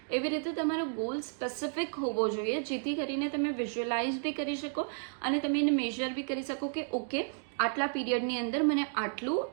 એવી રીતે તમારો ગોલ સ્પેસિફિક હોવો જોઈએ, જેથી કરીને તમે વિઝ્યુઅલાઇઝ બી કરી શકો અને તમે એને મેઝર બી કરી શકો કે ઓકે, આટલા પીરિયડની અંદર મને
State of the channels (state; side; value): silent; left; digital silence